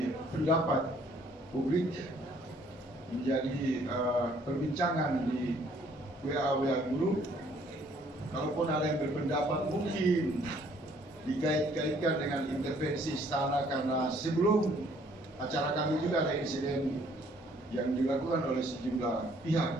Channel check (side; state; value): both; normal; correlation 0.62